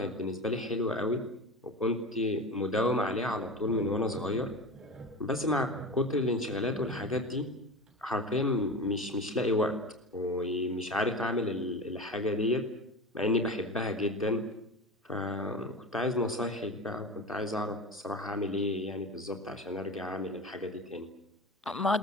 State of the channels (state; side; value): normal; both; correlation 0.29